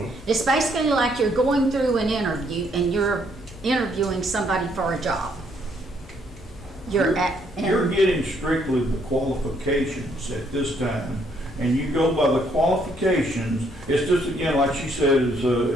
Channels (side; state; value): both; normal; correlation 0.69